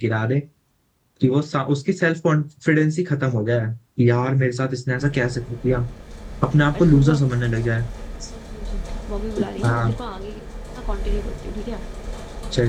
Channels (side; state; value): both; identical; correlation 1.00